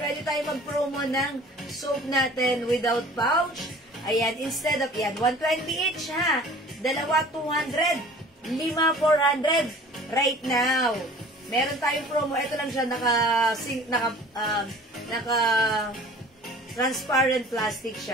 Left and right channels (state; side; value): normal; both; correlation 0.47